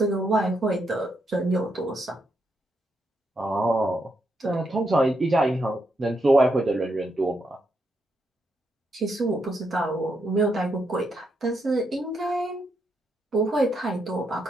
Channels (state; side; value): normal; both; correlation 0.80